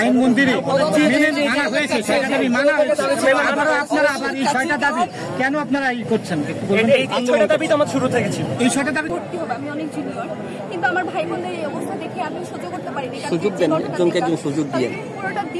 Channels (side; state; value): both; identical; correlation 1.00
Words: আইন মন্দিরে মানা হয়েছে, 6টা দাবি মানা হয়েছে, আপনারা আবার এই 6টা দাবি কেন আপনারা এই করছেন? এই 6টা দাবি তো আমার শুরু থেকে ছিল। এই 6টা দাবি ভর্তি হবে, আমি অনেক জুনিয়র, কিন্তু আমার ভাই বোনদের এই অবস্থা দেখে আমি সহ্য করতে পারিনি। সুযোগ দেন, একজনকে একজন সুযোগ দিয়ে পুরোটা